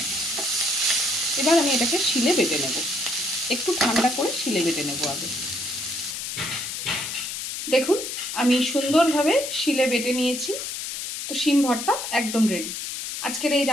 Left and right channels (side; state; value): left; noise; hiss, 6 dB below the sound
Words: এবার আমি এটাকে শিলে বেটে নেব। একটু ঠান্ডা করে শিলে বেটে নেব আগে। দেখুন আমি সুন্দরভাবে শিলে বেটে নিয়েছি। তো শিম ভর্তা একদম রেডি। আজকের এই